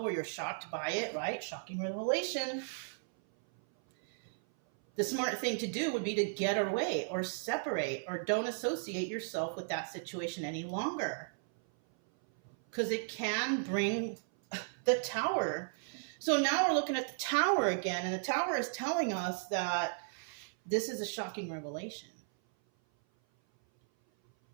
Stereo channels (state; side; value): silent; left; 54 dB below the other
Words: or you're shocked by it, right? Shocking revelation. The smart thing to do would be to get away or separate, or don't associate yourself with that situation any longer. Because it can bring the Tower. So now we're looking at the Tower again, and the Tower is telling us that this is a shocking revelation.